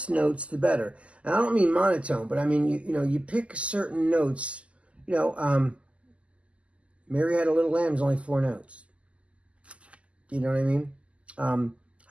notes, the better. And I don't mean monotone, but I mean, you know, you pick certain notes. You know, Mary Had a Little Lamb is only 4 notes. You know what I mean?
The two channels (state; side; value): late; left; 0.060 ms